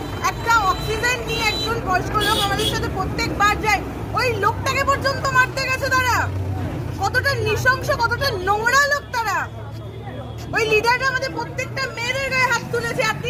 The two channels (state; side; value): identical; both; correlation 1.00